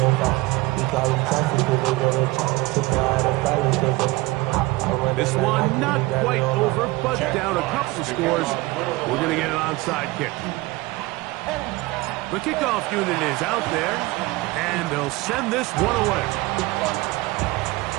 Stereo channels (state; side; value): quieter; left; 21.2 dB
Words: This one not quite over, but down a couple of scores. We're going to get an onside kick. The kickoff unit is out there, and they'll send this one away.